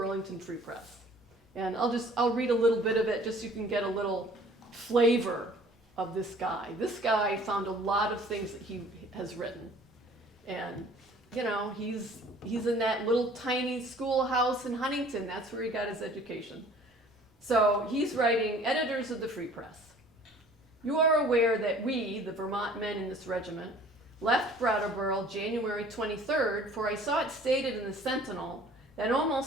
Free Press. And I'll read a little bit of it just so you can get a little flavor of this guy. This guy found a lot of things that he has written. And, he's in that little tiny schoolhouse in Huntington. That's where he got his education. So he's writing, editors of the Free Press. You are aware that we, the Vermont men in this regiment, left Brattleboro January 23rd, for I saw it stated in the Sentinel that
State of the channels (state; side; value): normal; both; correlation 0.51